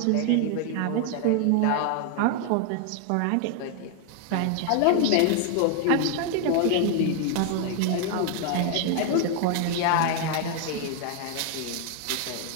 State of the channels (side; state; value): both; different; correlation 0.00